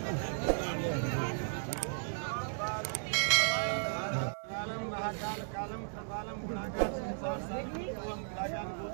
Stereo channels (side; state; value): left; silent; digital silence